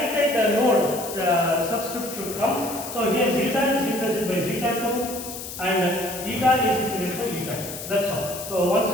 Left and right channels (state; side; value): noise; left; hiss, 9 dB below the sound